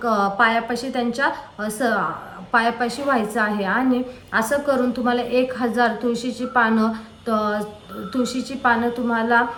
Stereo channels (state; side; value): identical; both; correlation 1.00